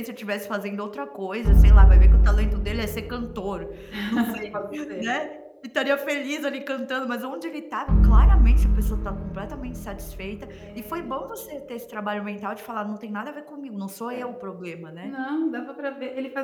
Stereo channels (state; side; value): identical; both; correlation 1.00